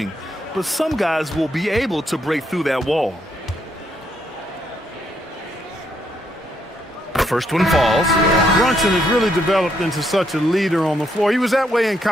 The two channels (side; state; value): both; normal; correlation 0.75